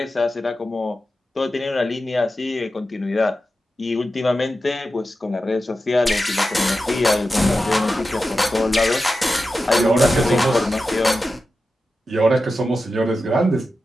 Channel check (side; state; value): both; normal; correlation 0.92